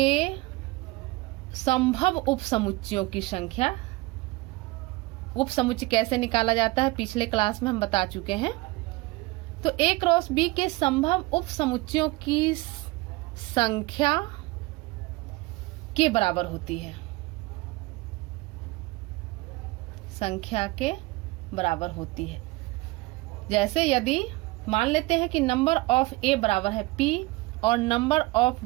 संभव उपसमुच्चयों की संख्या। उपसमुच्चय कैसे निकाला जाता है पिछले क्लास में हम बता चुके हैं। तो A क्रॉस B के संभव उपसमुच्चयों की संख्या के बराबर होती है, संख्या के बराबर होती है। जैसे यदि मान लेते हैं कि नंबर ऑफ A बराबर है P और नंबर ऑफ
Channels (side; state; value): left; quieter; 22.1 dB